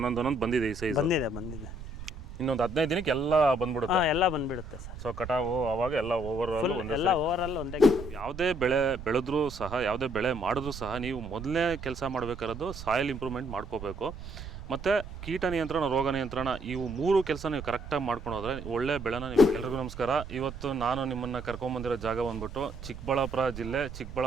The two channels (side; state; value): right; noise; rumble, 11 dB below the sound